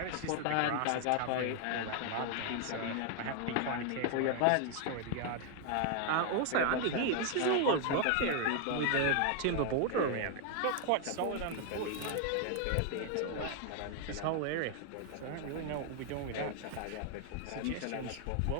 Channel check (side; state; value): both; different; correlation 0.00